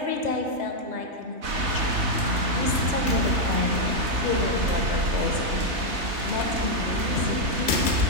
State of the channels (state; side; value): late; left; 3.3 ms